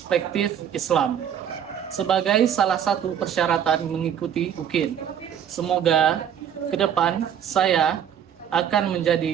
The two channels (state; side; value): quieter; left; 9.0 dB